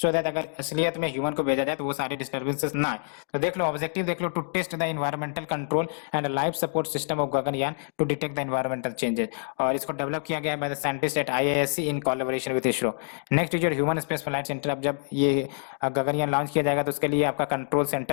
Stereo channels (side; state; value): right; silent; digital silence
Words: सो दैट अगर असलियत में ह्यूमन को भेजा जाए तो वो सारे डिस्टर्बेंसेस ना आए। तो देख लो ऑब्जेक्टिव देख लो, to test the environmental control and life support system of Gaganyaan to detect the environmental changes, और इसको डेवलप किया गया है by the scientist at IISc in collaboration with ISRO. Next is your human space flight centre. अब जब ये गगनयान लॉन्च किया जाएगा तो उसके लिए आपका कंट्रोल